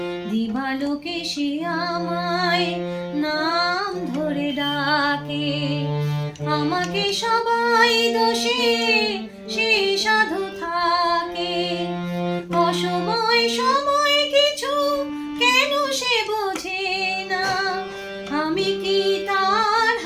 দিবালোকে সে আমায় নাম ধরে ডাকে, আমাকে সবাই দোষে সে সাধু থাকে। অসময় সময় কিছু কেন সে বোঝে না, আমি কি তার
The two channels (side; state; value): both; identical; correlation 1.00